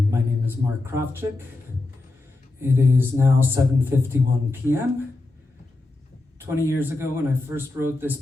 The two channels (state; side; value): quieter; right; 3.0 dB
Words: name is Marek Krawczyk. It is now 7:51 p.m. 20 years ago when I first wrote this